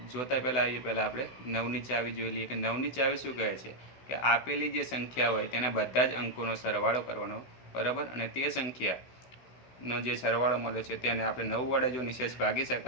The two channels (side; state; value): right; late; 16 ms